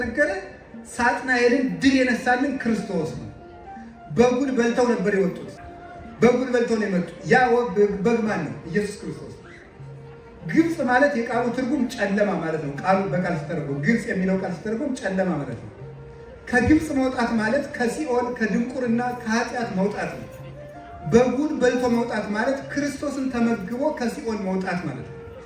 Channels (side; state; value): both; identical; correlation 1.00